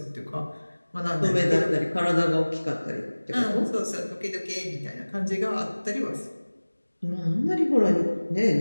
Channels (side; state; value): both; inverted; correlation -1.00